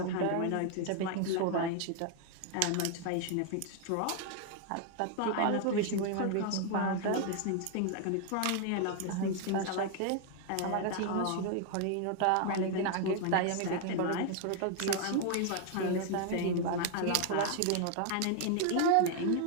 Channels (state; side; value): different; both; correlation 0.00